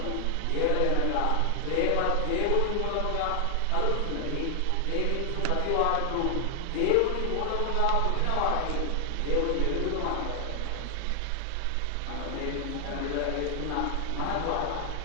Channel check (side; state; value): both; different; correlation 0.00